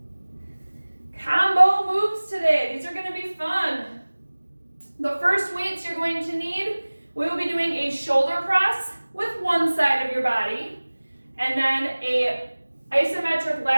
Combo moves today. These are going to be fun. The first weights you're going to need, we will be doing a shoulder press with one side of your body, and then a isometric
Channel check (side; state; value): both; inverted; correlation -1.00